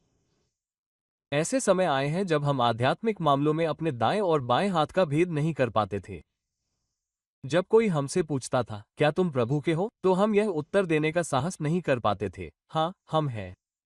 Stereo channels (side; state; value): both; identical; correlation 1.00